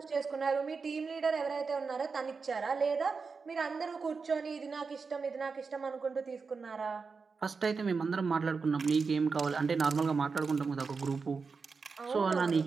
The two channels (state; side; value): quieter; left; 4.9 dB